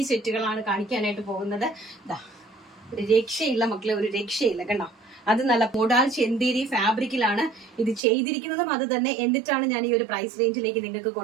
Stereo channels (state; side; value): drops out; left; at 8.0 s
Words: സെറ്റുകളാണ് കാണിക്കാനായിട്ട് പോകുന്നത്. ഒരു രക്ഷയില്ല മക്കളെ, ഒരു രക്ഷയില്ല കണ്ടോ. അത് നല്ല മോഡാൾ ചെന്തേരി ഫാബ്രിക്കിലാണ് ഇത് ചെയ്തിരിക്കുന്നതും അത് തന്നെ. എന്നിട്ടാണ് ഞാൻ ഈ ഒരു പ്രൈസ് റേഞ്ചിലേക്ക് നിങ്ങൾക്ക്